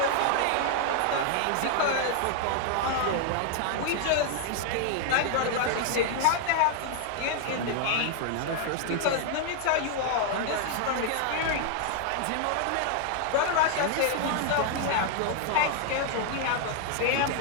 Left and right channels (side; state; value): both; different; correlation 0.00